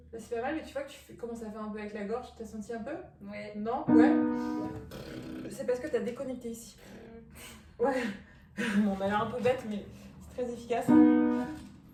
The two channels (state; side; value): identical; both; correlation 1.00